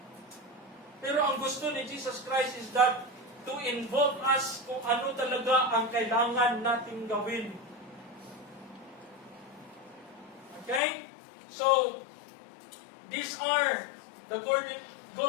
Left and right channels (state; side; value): drops out; right; at 10.8 s